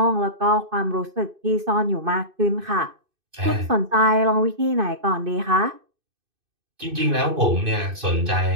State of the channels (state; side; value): late; left; 2.6 ms